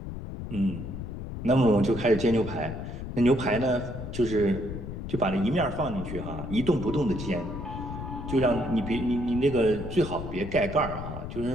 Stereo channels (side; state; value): left; noise; rumble, 8 dB below the sound